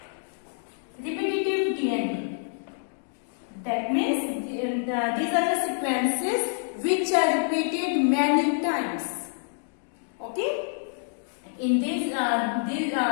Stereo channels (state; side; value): silent; right; digital silence